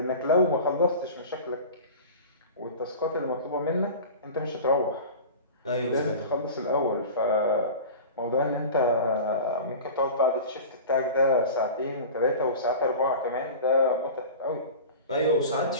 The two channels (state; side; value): inverted; both; correlation -0.35